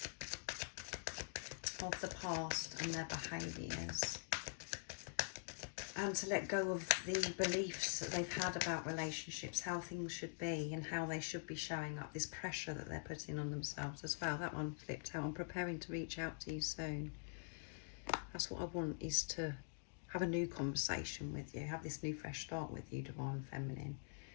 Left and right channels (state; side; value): silent; right; digital silence